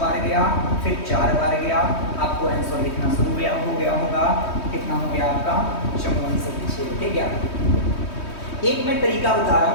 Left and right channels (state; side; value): late; right; 3.2 ms